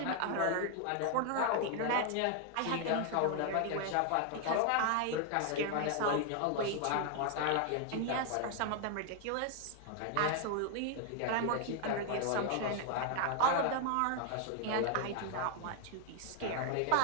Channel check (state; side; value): different; both; correlation 0.00